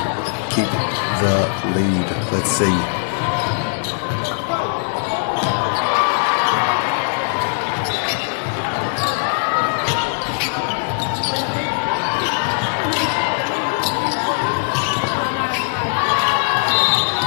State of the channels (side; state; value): right; silent; digital silence